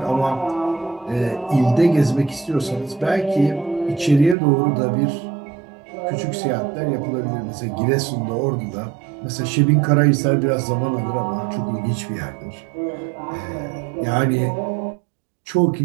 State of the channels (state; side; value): drops out; left; at 4.4 s